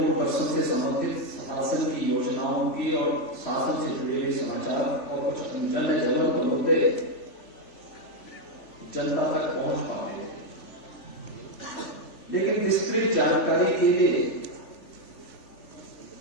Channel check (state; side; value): late; right; 3.4 ms